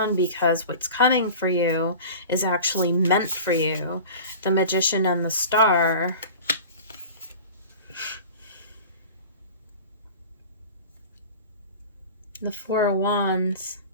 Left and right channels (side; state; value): both; inverted; correlation -0.37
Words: because what's coming for you is actually meant for you. The Magician and the Star. The Four of Wands.